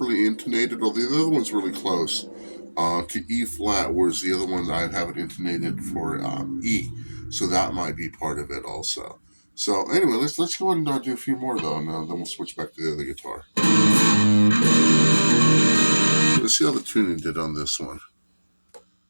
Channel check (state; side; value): inverted; both; correlation -1.00